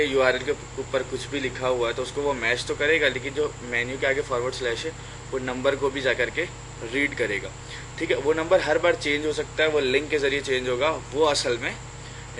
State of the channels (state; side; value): identical; both; correlation 1.00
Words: यूआरएल के ऊपर कुछ भी लिखा हुआ है तो उसको वो मैच तो करेगा, लेकिन जो मेन्यू के आगे फॉरवर्ड स्लैश है वो नंबर को भी जा करके रीड करेगा। ठीक है, वो नंबर हर बार चेंज हो सकता है, वो लिंक के जरिए चेंज होगा, वो असल में